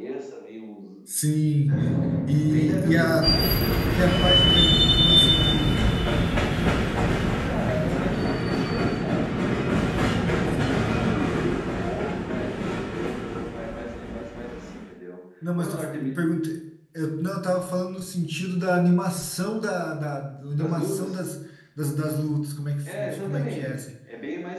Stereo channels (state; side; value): identical; both; correlation 1.00